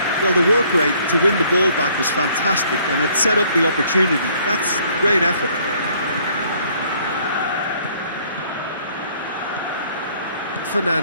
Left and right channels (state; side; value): inverted; both; correlation -0.61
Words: Well, the work rate to win the ball back was fantastic, and it set up the opportunity. That's great effort.